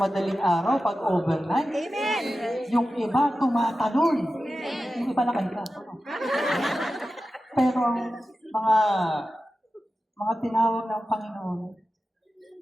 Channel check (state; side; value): normal; both; correlation 0.93